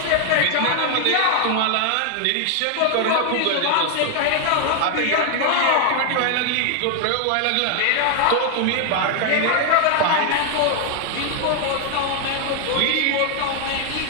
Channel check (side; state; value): both; different; correlation 0.00